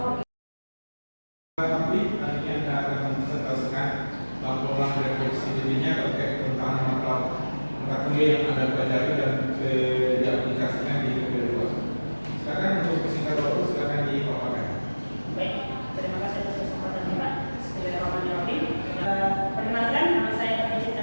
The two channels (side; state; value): both; inverted; correlation -1.00